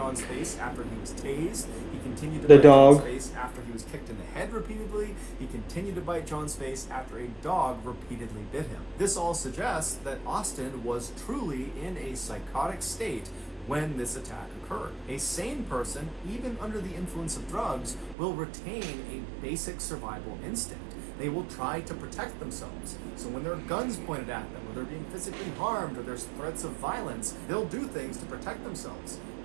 face after he was tased. He continued to bite John's face after he was kicked in the head repeatedly. He continued to bite John's face after a dog repeatedly bit him. This all suggests that Austin was truly in a psychotic state when this attack occurred. A sane person, even under the influence of drugs, will retain a basic survival instinct. They will try to protect themselves. So when there are guns pointed at them, or they're being physically harmed, or there's threats of violence, they'll do things to protect themselves.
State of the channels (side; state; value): left; drops out; at 18.2 s